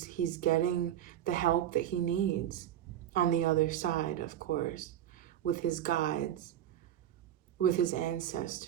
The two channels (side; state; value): left; quieter; 11.2 dB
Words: getting the help that he needs on the other side, of course, with his guides, with his